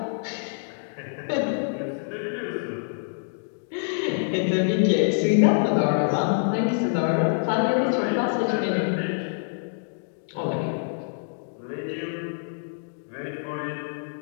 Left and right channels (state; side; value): silent; right; digital silence